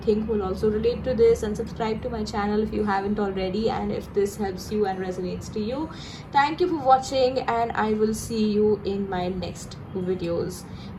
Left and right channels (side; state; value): both; identical; correlation 1.00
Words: will also relate to this, and subscribe to my channel if you haven't already. And if this helps you and resonates to you, thank you for watching, and I will see you in my next videos.